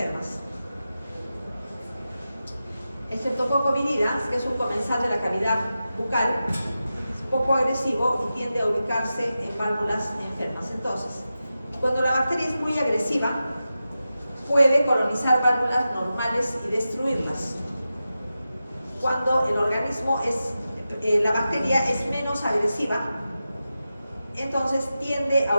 El Streptococcus viridans, que es un comensal de la cavidad bucal, es poco agresivo y tiende a ubicarse en válvulas enfermas. Entonces, cuando la bacteria es muy agresiva, puede colonizar válvulas normales y destruirlas. Cuando el organismo la bacteria es menos agresiva, entonces tiende a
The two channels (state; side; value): inverted; both; correlation -0.92